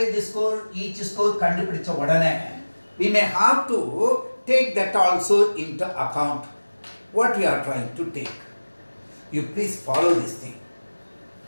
score, each score kandupidicha odane, we may have to take that also into account. What we are trying to take. You please follow this thing.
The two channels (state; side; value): inverted; both; correlation -1.00